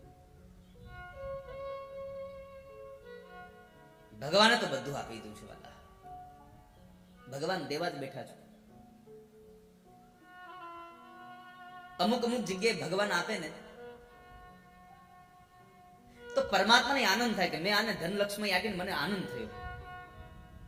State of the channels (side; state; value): both; identical; correlation 1.00